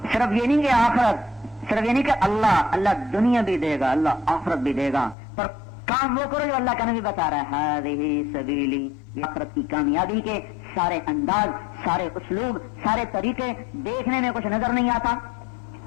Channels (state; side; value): drops out; right; at 5.2 s